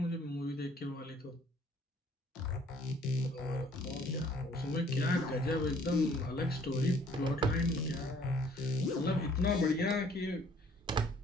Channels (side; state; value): both; normal; correlation 0.59